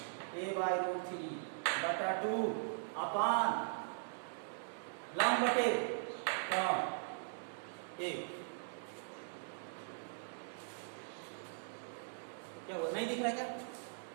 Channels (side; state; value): left; silent; digital silence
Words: a/√3 बटा 2 अपान लंब बटे कर्ण a। क्या हुआ, नहीं दिख रहा क्या?